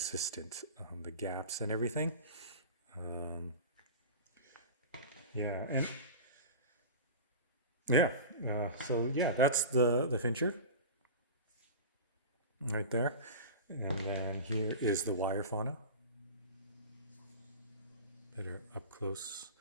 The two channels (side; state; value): both; inverted; correlation -0.31